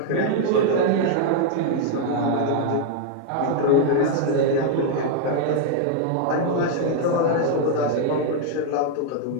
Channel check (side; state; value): both; different; correlation 0.00